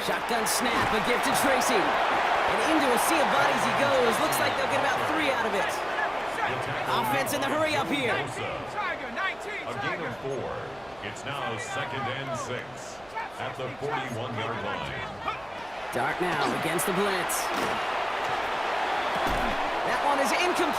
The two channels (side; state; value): right; noise; hum, 26 dB below the sound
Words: Shotgun snap, a gift to Tracy. And into a sea of bodies he goes. Looks like they'll get about 3 out of it. Offense in the hurry up here. 19 Tiger, 19 A gain Tiger. of 4. It's now 2nd and 6 at the 41-yard line. Dart now against the blitz. That one is